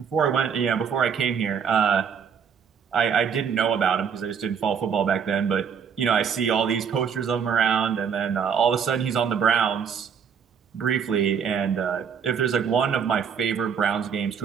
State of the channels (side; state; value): left; quieter; 7.1 dB